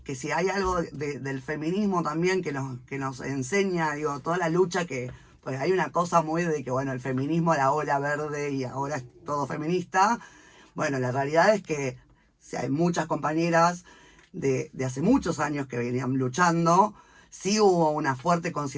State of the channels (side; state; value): both; identical; correlation 1.00